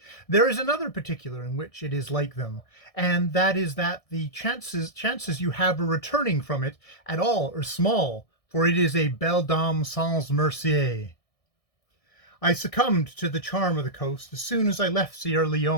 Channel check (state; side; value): late; right; 1.6 ms